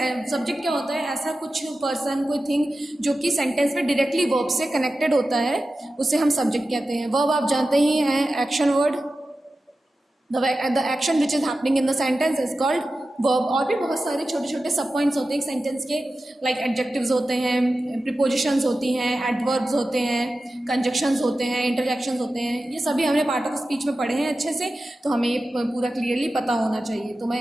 क्या होता है, ऐसा कुछ पर्सन, कोई थिंग जो कि सेंटेंस में डायरेक्टली वर्ब से कनेक्टेड होता है, उसे हम सब्जेक्ट कहते हैं. वर्ब आप जानते ही हैं, action word. The action which is happening in the sentence is called verb. और भी बहुत सारे छोटे छोटे सब पॉइंट्स होते हैं एक सेंटेंस के, लाइक एडजेक्टिव्स होते हैं, प्रीपोजिशंस होती हैं, एडवर्ब्स होते हैं, कंजक्शंस होते हैं, इंटरजेक्शंस होते हैं. ये सभी हमने पार्ट ऑफ स्पीच में पढ़े हैं अच्छे से, तो हमें ये पूरा क्लियरली पता होना चाहिए. तो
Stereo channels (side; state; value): both; normal; correlation 0.93